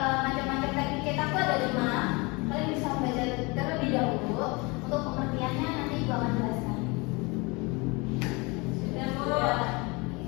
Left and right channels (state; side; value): quieter; right; 26.9 dB